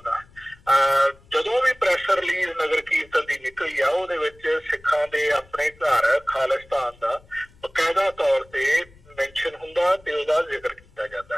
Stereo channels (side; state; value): left; noise; rumble, 27 dB below the sound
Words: ਜਦੋਂ ਵੀ ਪ੍ਰੈਸ ਰਿਲੀਜ਼ ਨਗਰ ਕੀਰਤਨ ਦੀ ਨਿਕਲੀ ਆ ਉਹਦੇ ਵਿੱਚ ਸਿੱਖਾਂ ਦੇ ਆਪਣੇ ਘਰ ਖਾਲਿਸਤਾਨ ਦਾ ਬਕਾਇਦਾ ਤੌਰ ਤੇ ਮੈਂਸ਼ਨ ਹੁੰਦਾ ਤੇ ਉਹਦਾ ਜ਼ਿਕਰ ਕੀਤਾ ਜਾਂਦਾ।